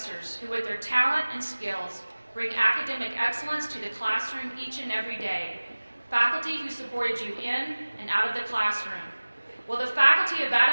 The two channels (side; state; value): both; inverted; correlation -1.00